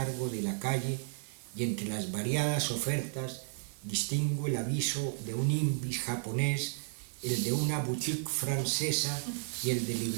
de la calle y entre las variadas ofertas distingo el aviso de un imbis japonés, el de una boutique francesa y el de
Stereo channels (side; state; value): left; silent; digital silence